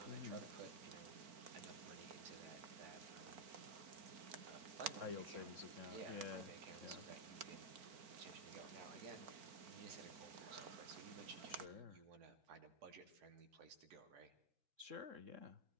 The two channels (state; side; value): late; left; 4.4 ms